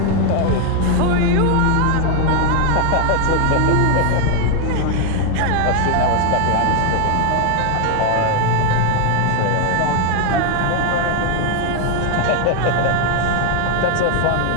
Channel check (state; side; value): different; both; correlation 0.01